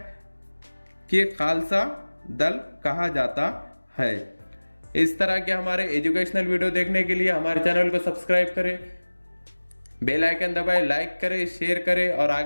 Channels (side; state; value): both; inverted; correlation -1.00